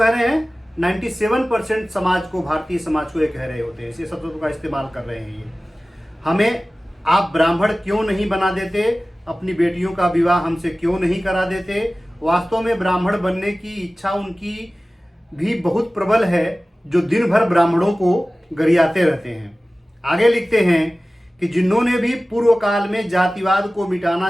रहे हैं? 97% समाज को, भारतीय समाज को ये कह रहे होते हैं, इसी शब्दों का इस्तेमाल कर रहे हैं ये। हमें आप ब्राह्मण क्यों नहीं बना देते, अपनी बेटियों का विवाह हमसे क्यों नहीं करा देते। वास्तव में ब्राह्मण बनने की इच्छा उनकी भी बहुत प्रबल है, जो दिन भर ब्राह्मणों को गरियाते रहते हैं। आगे लिखते हैं कि जिन्होंने भी पूर्व काल में जातिवाद को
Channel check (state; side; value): normal; both; correlation 0.97